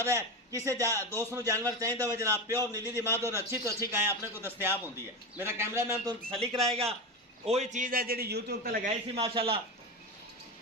है। किसी दोस्त को जानवर चाहिए हो जनाब प्योर नीली दी माद और अच्छी तो अच्छी गाय अपने को दस्तियाब होती है। मेरा कैमरामैन तो तसली कराएगा। वही चीज़ है जी यूट्यूब पर लगाई सी माशाल्लाह।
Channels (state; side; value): normal; both; correlation 0.20